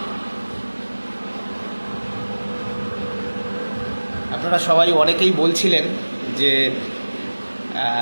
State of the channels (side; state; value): both; inverted; correlation -1.00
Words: আপনারা সবাই অনেকেই বলছিলেন যে